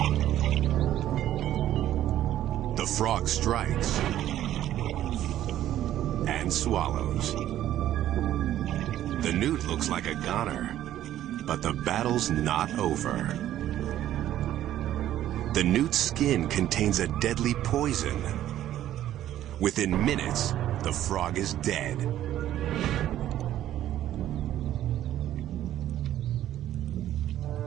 The frog strikes and swallows. The newt looks like a goner, but the battle's not over. The newt's skin contains a deadly poison. Within minutes, the frog is dead.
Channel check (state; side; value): quieter; left; 12.5 dB